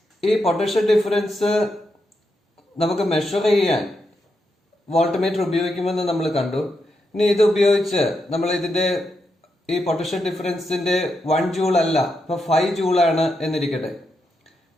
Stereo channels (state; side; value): normal; both; correlation 0.84